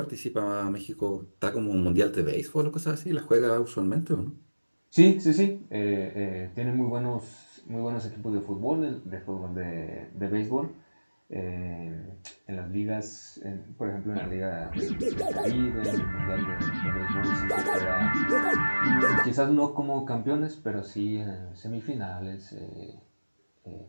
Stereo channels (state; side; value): inverted; both; correlation -1.00